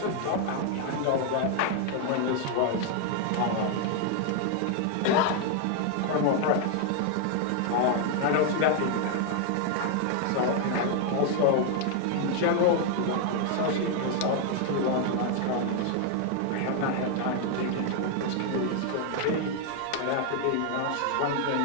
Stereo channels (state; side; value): different; both; correlation 0.00